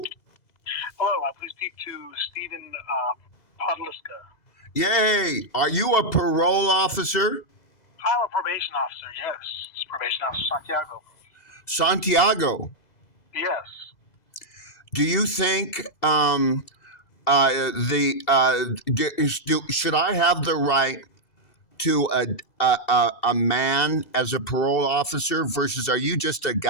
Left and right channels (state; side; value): late; right; 2.0 ms